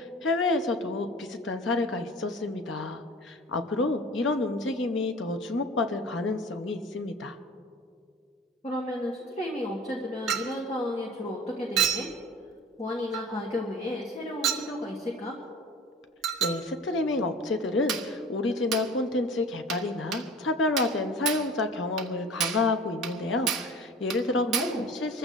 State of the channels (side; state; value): both; normal; correlation 0.41